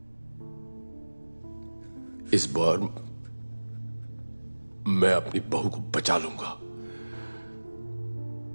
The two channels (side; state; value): both; inverted; correlation -1.00